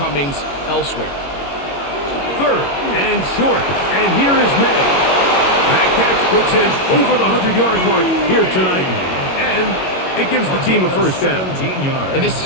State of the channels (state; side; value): late; right; 22 ms